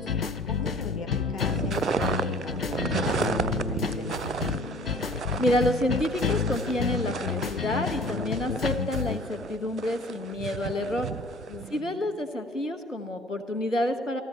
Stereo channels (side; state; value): both; normal; correlation 0.49